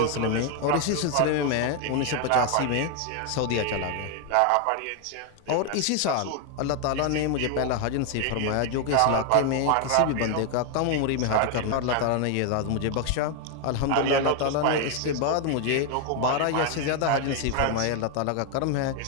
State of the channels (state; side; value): different; both; correlation 0.01